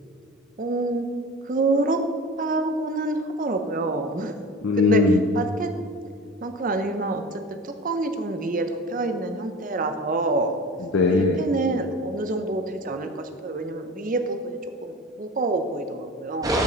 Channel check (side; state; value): both; normal; correlation 0.35